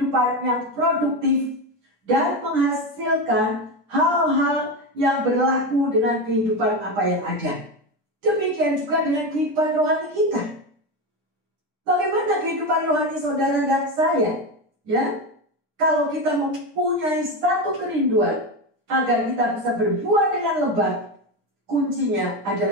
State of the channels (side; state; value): left; late; 9.9 ms